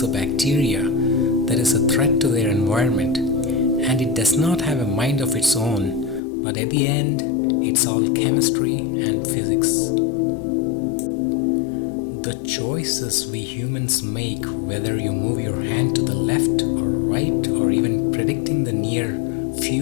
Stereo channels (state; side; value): drops out; right; at 6.2 s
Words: a bacteria that is a threat to their environment, and it does not have a mind of its own, but at the end, it's all chemistry and physics. The choices we humans make, whether you move your hand to the left or right or even predicting the near